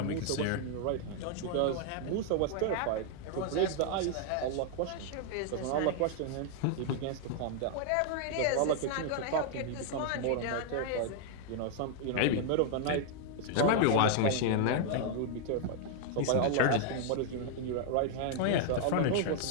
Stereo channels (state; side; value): different; both; correlation 0.00